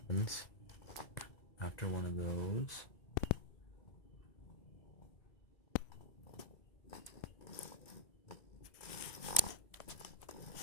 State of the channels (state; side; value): late; right; 1.7 ms